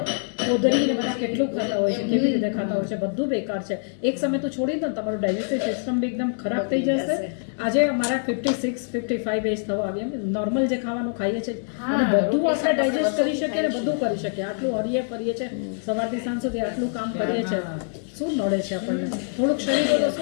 કોદરીને બધા કેટલું ખાતા હોય છે, કેવી રીતે ખાતા હોય છે, બધું બેકાર છે. એક સમય તો છોડી દો ને તમારું ડાયજેસ્ટિવ સિસ્ટમ બી એકદમ ખરાબ થઈ જશે. આજે અમારા 56 55 એજ થવા આવી એમ નોર્મલ જે ખાવાનું ખાઈએ છીએ અને બધું આપણે ડાયજેસ્ટ કરી શકીએ ને બધું કરી શકીએ. આટલું હરીએ ફરીએ છે સવારથી સાંજ સુધી આટલું કામ કરીએ છે, શું નડે છે આપણને? થોડુંક શરીર હોય તો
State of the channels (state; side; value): silent; right; digital silence